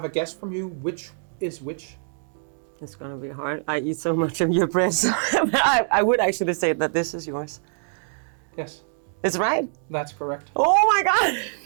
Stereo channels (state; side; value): silent; left; digital silence